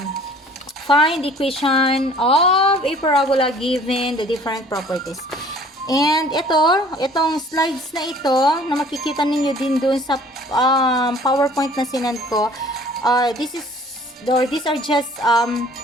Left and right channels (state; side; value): normal; both; correlation 0.52